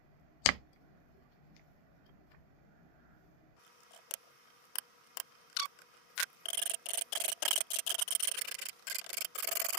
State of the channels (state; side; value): late; right; 29 ms